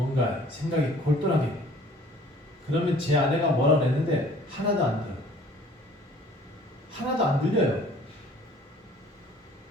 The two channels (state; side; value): normal; both; correlation 0.52